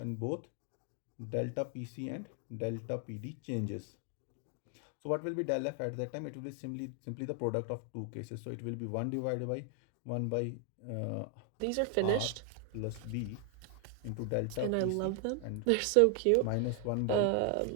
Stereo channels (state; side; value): different; both; correlation 0.00